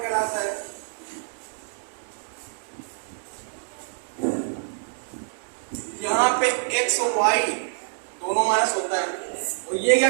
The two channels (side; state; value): left; silent; digital silence